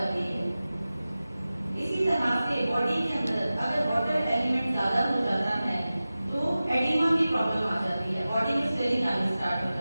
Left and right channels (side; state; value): both; inverted; correlation -0.96